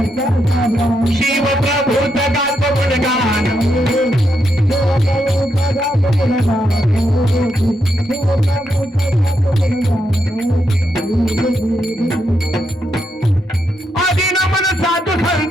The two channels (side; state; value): both; normal; correlation 0.81